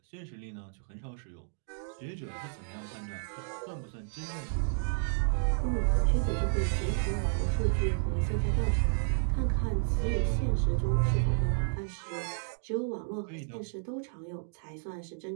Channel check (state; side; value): silent; left; digital silence